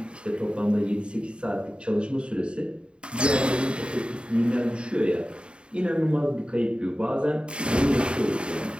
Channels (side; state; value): left; late; 0.054 ms